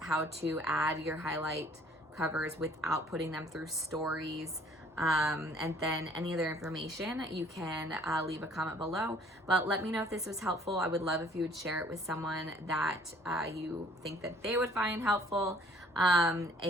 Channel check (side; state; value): both; normal; correlation 0.57